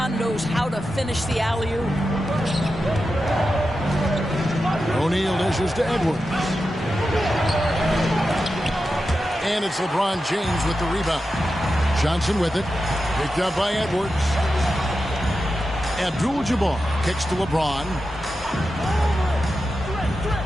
knows how to finish the alley-oop. O'Neal dishes to Edwards. And it's LeBron James with the rebound. Johnson with it. Picked up by Edwards. Abdul-Jabbar kicks to LeBron.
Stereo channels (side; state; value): both; normal; correlation 0.90